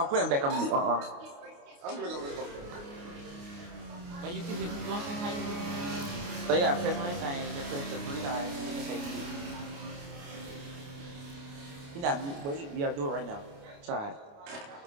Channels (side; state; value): left; late; 29 ms